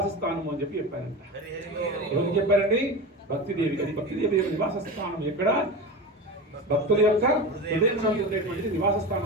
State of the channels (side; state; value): both; normal; correlation 0.26